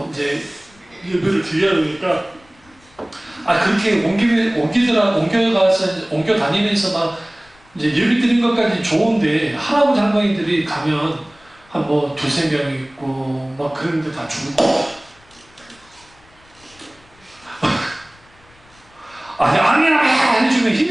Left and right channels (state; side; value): noise; left; rumble, 29 dB below the sound